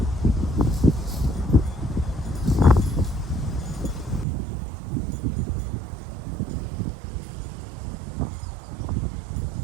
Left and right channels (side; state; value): left; drops out; at 4.2 s